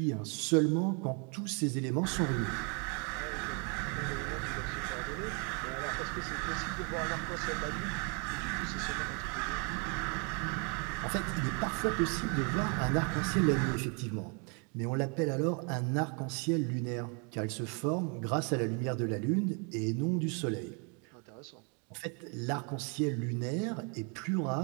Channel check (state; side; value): quieter; left; 35.5 dB